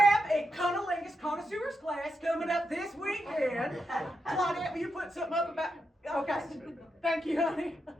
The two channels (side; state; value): both; normal; correlation 0.85